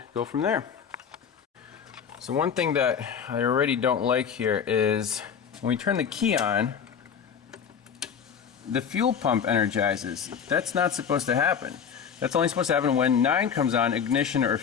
go from there. So one thing that I already don't like here is when we turn the key on, the fuel pump energizes. That's not supposed to happen. That's only supposed to happen when 9 comes on, ignition or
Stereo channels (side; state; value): right; quieter; 7.3 dB